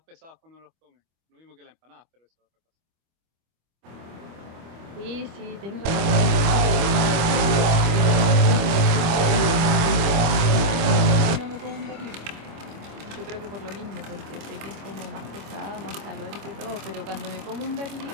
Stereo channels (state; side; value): late; left; 25 ms